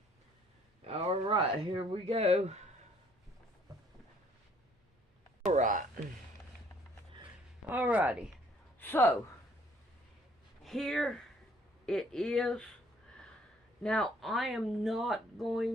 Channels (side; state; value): both; normal; correlation 0.61